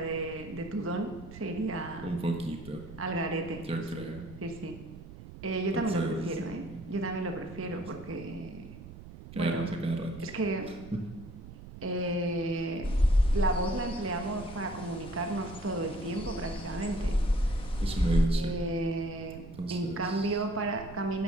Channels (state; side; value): noise; right; rumble, 15 dB below the sound